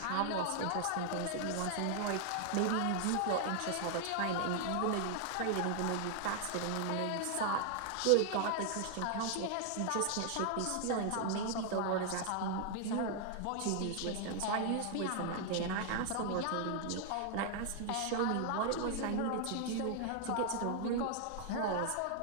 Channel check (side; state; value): both; different; correlation 0.00